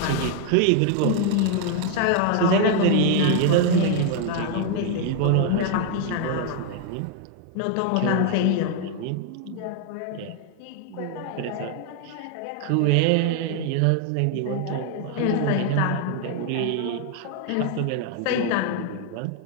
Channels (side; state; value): both; different; correlation 0.00